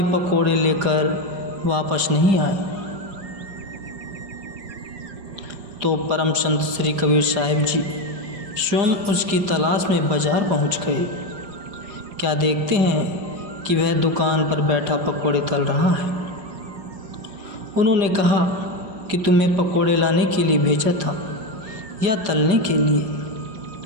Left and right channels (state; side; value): late; left; 5.0 ms